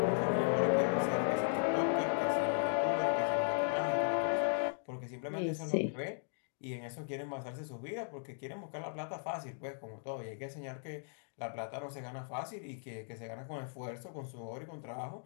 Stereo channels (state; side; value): silent; right; digital silence